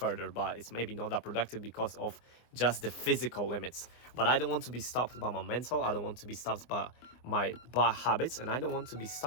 but it's maybe not that productive because of just the physical limits. But I don't want to be stopped by my mental, I don't want to be stopped by my bad habits, and I don't want to be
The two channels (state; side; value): late; right; 24 ms